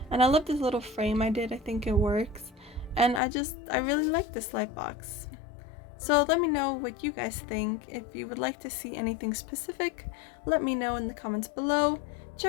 and I love this little frame I did. I think it works, and I really like this Lightbox. So let me know what you guys think. If you would like to see anything specific, let me know in the comments below.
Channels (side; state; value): right; drops out; at 3.2 s